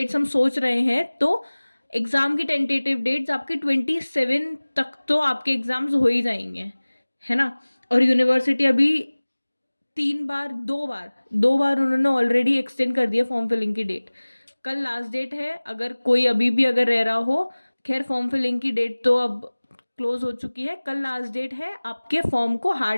हम सोच रहे हैं, तो एग्ज़ाम की टेंटेटिव डेट्स आपकी 27 तक तो आपके एग्ज़ाम्स हो ही जाएंगे, है ना। और यूनिवर्सिटी अभी 2 बार उन्होंने ऑलरेडी एक्सटेंड कर दिया फॉर्म फिलिंग की डेट। कल लास्ट डेट है, अगर कोई अभी भी अगर रह रहा हो, खैर फॉर्म फिलिंग की डेट तो अब क्लोज हो चुकी है। कल लास्ट डेट है आपके फॉर्म को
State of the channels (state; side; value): inverted; both; correlation -1.00